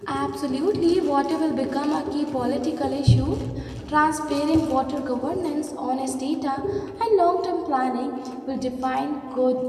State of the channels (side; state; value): both; identical; correlation 1.00